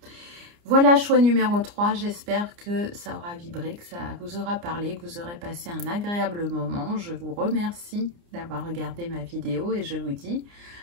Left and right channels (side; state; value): left; late; 29 ms